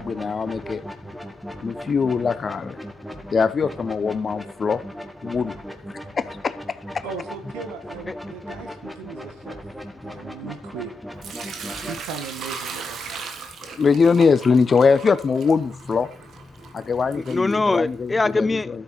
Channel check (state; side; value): quieter; right; 4.1 dB